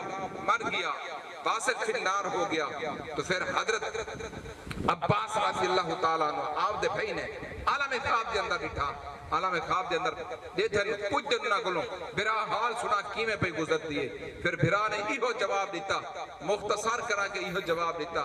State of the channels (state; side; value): identical; both; correlation 1.00